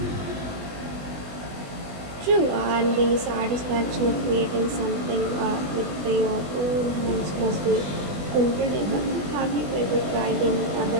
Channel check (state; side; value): late; left; 20 ms